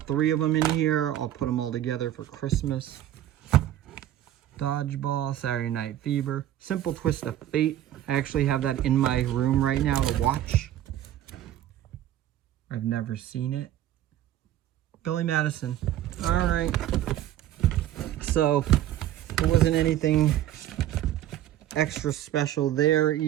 of them in here, I'll put them all together for Christmas. Dodgeball, Saturday Night Fever, Simple Twist of Fate. I actually have that in my room right now to watch. I've never seen it. Billy Madison. All right. So there wasn't anything extra special there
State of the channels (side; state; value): left; quieter; 12.3 dB